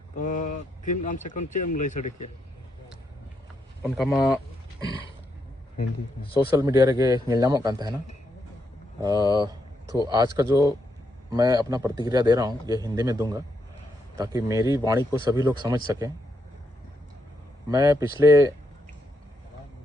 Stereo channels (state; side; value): normal; both; correlation 0.80